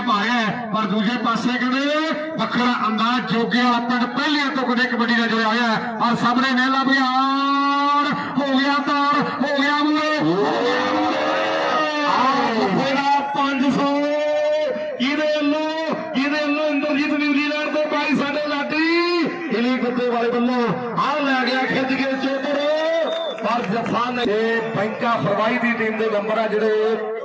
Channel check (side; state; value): both; identical; correlation 1.00